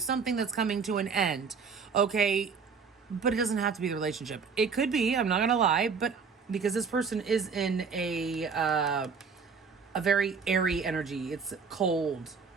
that's coming to an end. Okay. But it doesn't have to be the relationship. It could be, I'm not going to lie, but because this person is in a very airy energy. It's cold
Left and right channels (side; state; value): left; quieter; 5.6 dB